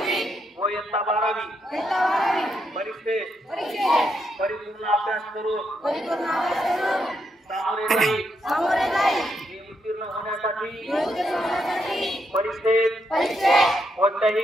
व इयत्ता 12वी परीक्षेत परिपूर्ण अभ्यास करून सामोरे जाईल उत्तीर्ण होण्यासाठी परीक्षेत कोणत्याही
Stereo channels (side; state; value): both; normal; correlation 0.79